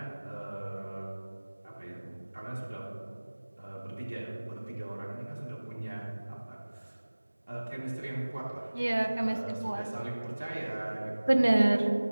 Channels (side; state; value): both; inverted; correlation -1.00